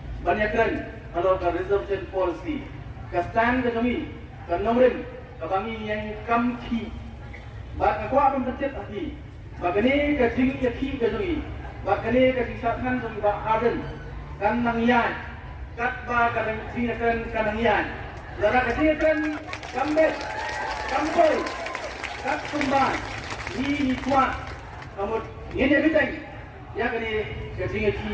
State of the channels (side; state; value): both; identical; correlation 1.00